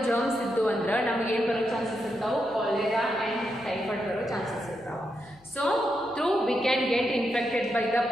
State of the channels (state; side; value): noise; left; hum, 29 dB below the sound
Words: ಜರ್ಮ್ಸ್ ಇದ್ದು ಅಂದ್ರೆ ನಮಗೇನು ಬರೋ chances ಇರ್ತಾವೆ, cholera and typhoid ಬರೋ ಚಾನ್ಸಸ್ ಇರ್ತಾವೆ. So through we can get infected by the